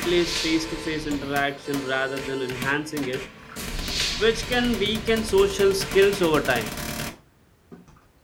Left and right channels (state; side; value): identical; both; correlation 1.00